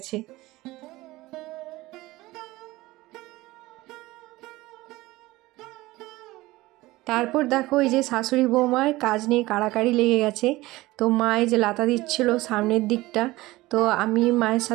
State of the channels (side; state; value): left; quieter; 19.0 dB